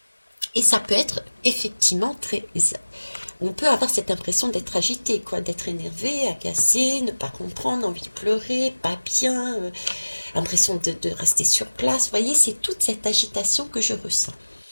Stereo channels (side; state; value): both; inverted; correlation -1.00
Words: et ça peut être effectivement très... On peut avoir cette impression d'être agité, quoi, d'être énervé, agacé, ne pas comprendre, envie de pleurer, pas bien, impression de rester sur place. Vous voyez, c'est toute cette agitation que je ressens.